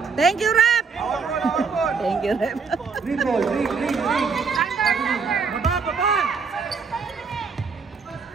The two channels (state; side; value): quieter; left; 5.3 dB